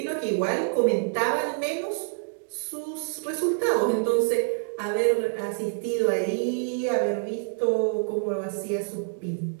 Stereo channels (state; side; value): silent; left; digital silence